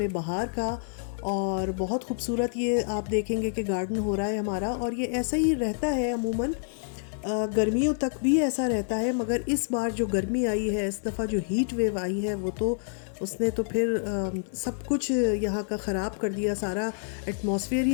बहार का। और बहुत खूबसूरत ये आप देखेंगे कि गार्डन हो रहा है हमारा। और ये ऐसा ही रहता है अमूमन, गर्मियों तक भी ऐसा रहता है, मगर इस बार जो गर्मी आई है, इस दफ़ा जो हीट वेव आई है, वो तो उसने तो फिर सब कुछ यहाँ का ख़राब कर दिया। सारा एटमॉस्फेयर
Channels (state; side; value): silent; right; digital silence